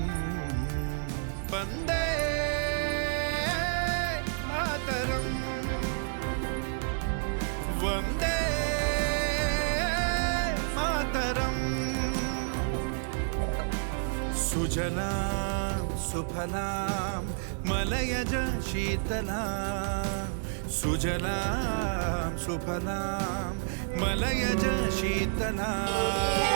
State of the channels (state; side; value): silent; left; 58 dB below the other